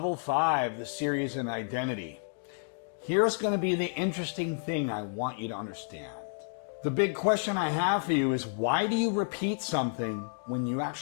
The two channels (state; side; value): silent; right; digital silence